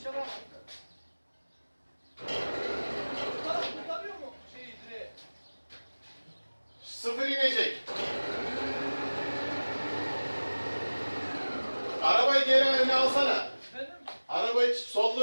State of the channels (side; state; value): both; inverted; correlation -1.00